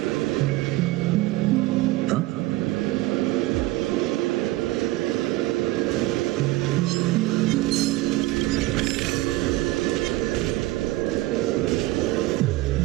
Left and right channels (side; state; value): left; quieter; 18.5 dB